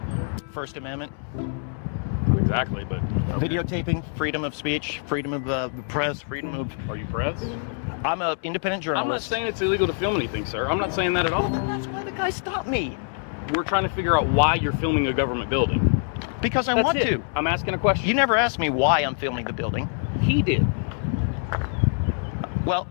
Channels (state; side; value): silent; right; 62 dB below the other